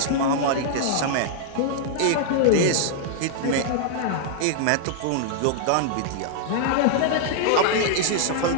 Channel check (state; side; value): different; both; correlation -0.01